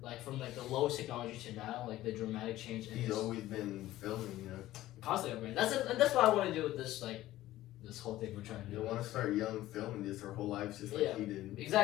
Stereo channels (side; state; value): right; quieter; 15.2 dB